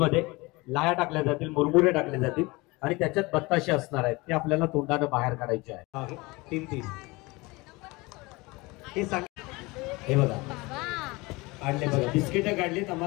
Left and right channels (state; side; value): quieter; right; 23.7 dB